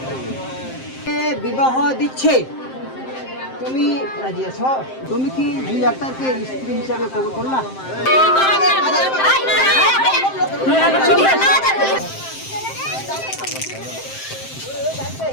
বিবাহ দিচ্ছে, তুমি রাজি আছো? তুমি কি 2 ডাক্তারকে স্ত্রী হিসাবে কবুল করলা?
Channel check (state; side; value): late; right; 7.6 ms